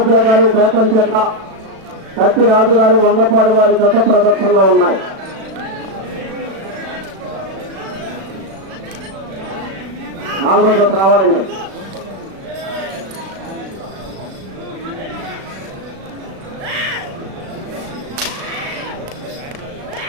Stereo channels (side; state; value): left; late; 36 ms